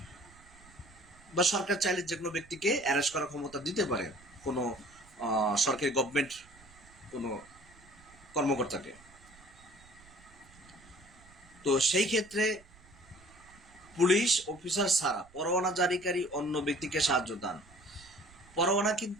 বা সরকার চাইলে যে কোনো ব্যক্তিকে অ্যারেস্ট করার ক্ষমতা দিতে পারে, কোনো সরকারি গভর্নমেন্ট কোনো কর্মকর্তাকে। তো সেই ক্ষেত্রে পুলিশ অফিসার ছাড়া পরোয়ানা জারিকারী অন্য ব্যক্তিকে সাহায্য দান। পরোয়ানা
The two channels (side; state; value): right; noise; rumble, 25 dB below the sound